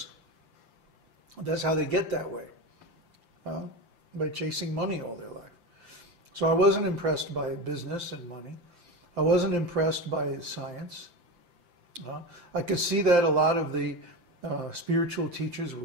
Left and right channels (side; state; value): left; late; 5.8 ms